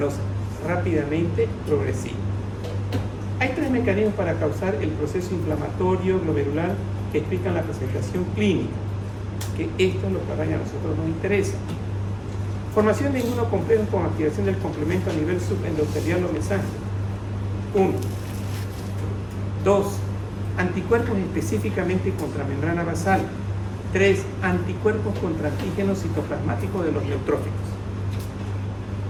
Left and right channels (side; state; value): both; identical; correlation 1.00